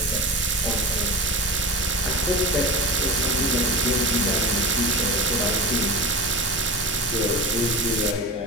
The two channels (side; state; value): both; normal; correlation 0.28